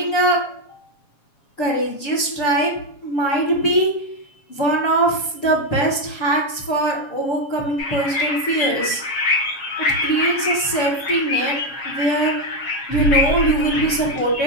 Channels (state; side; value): late; right; 7.2 ms